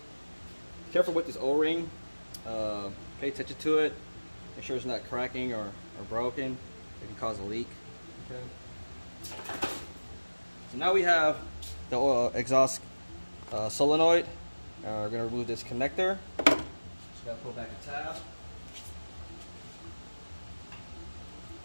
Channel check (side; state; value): both; inverted; correlation -1.00